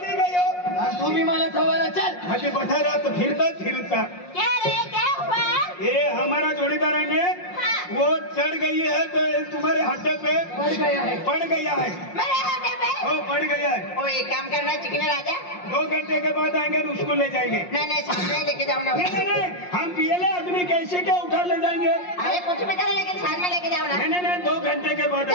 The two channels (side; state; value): right; late; 5.6 ms